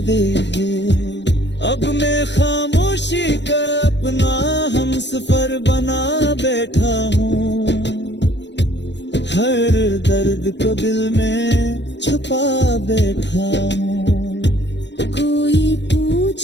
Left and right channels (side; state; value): right; late; 0.51 ms